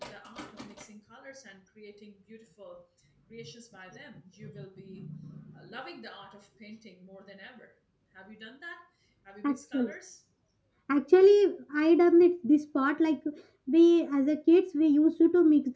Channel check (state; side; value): identical; both; correlation 1.00